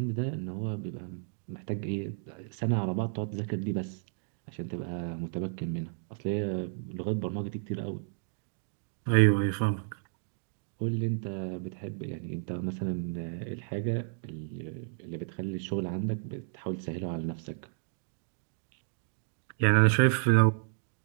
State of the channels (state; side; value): silent; left; digital silence